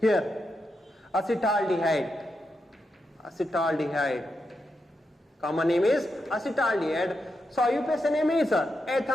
here acetaldehyde. Common name is acetaldehyde. So IUPAC name is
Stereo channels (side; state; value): both; normal; correlation 0.85